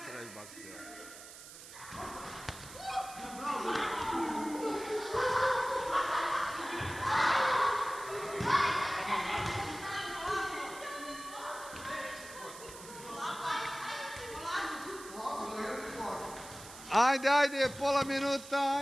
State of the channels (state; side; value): noise; right; hiss, 15 dB below the sound